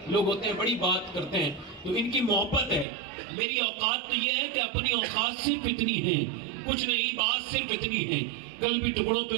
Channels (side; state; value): left; drops out; at 2.9 s